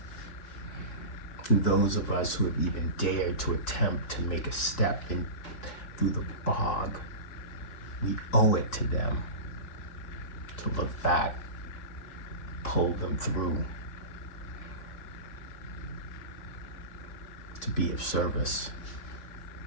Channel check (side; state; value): right; late; 4.6 ms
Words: And those of us who have even dared to attempt to make a step in through the bog, we owe it to them to look back, pull them through, to be of service.